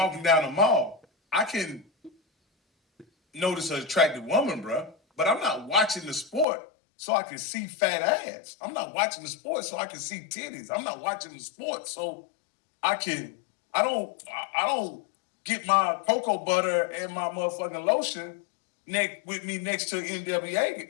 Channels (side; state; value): right; drops out; at 6.5 s